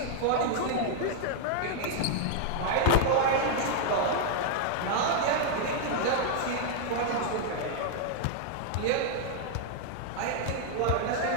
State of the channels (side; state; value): both; different; correlation -0.01